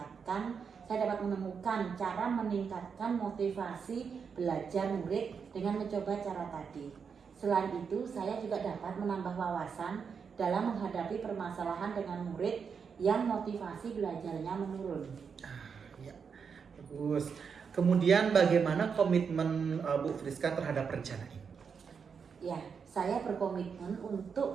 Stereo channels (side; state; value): left; quieter; 6.2 dB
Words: menemukan cara meningkatkan motivasi belajar murid dengan mencoba cara tadi. Selain itu, saya juga dapat menambah wawasan dalam menghadapi permasalahan dengan murid yang motivasi belajarnya menurun. Ya, bagus. Kemudian bagaimana komitmen Bu Friska terhadap rencana ini? Ya, saya berkomitmen